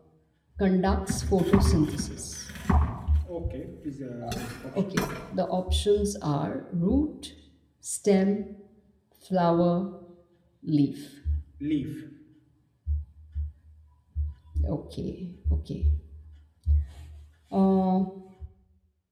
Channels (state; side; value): identical; both; correlation 1.00